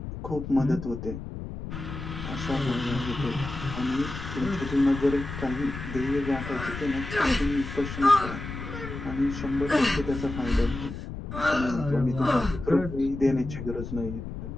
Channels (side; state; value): left; noise; rumble, 8 dB below the sound